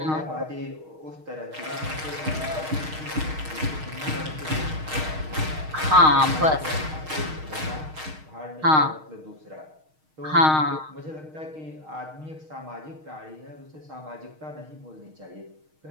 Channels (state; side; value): late; left; 6.4 ms